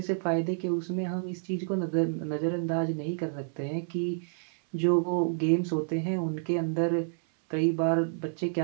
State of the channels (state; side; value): silent; left; 58 dB below the other